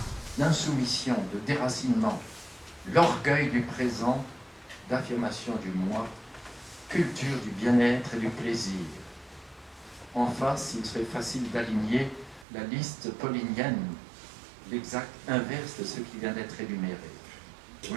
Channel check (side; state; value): left; drops out; at 12.5 s